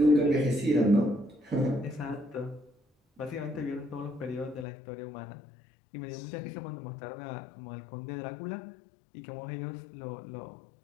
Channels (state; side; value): drops out; right; at 4.7 s